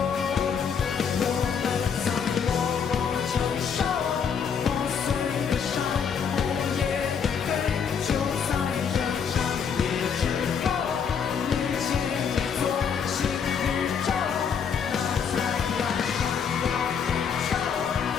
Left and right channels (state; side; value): quieter; right; 6.9 dB